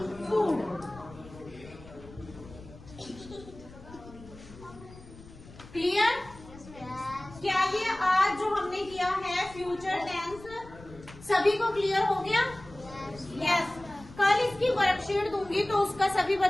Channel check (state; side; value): noise; left; rumble, 19 dB below the sound